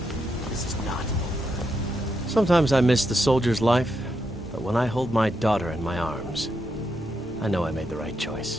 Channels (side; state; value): both; normal; correlation 0.82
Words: This is not over. Sometimes I miss the soldier's life, but when I hold my daughter in my arms, I know I made the right